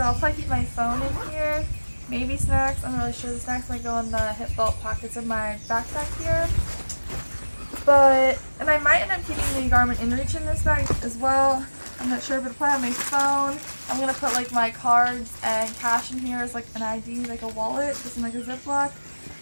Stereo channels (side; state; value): both; inverted; correlation -1.00